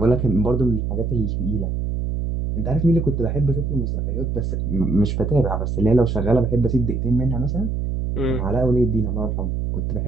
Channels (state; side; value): noise; right; hum, 1 dB below the sound